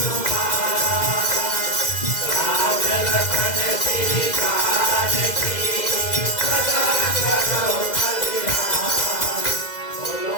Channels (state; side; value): late; right; 2.0 ms